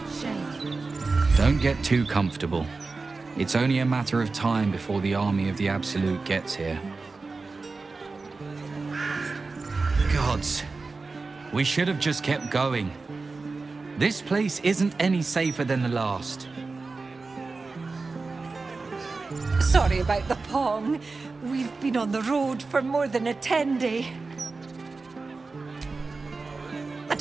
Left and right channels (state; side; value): quieter; left; 3.9 dB